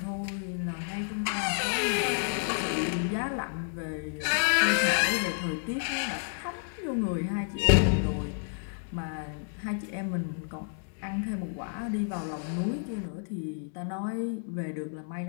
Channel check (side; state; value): right; silent; 58 dB below the other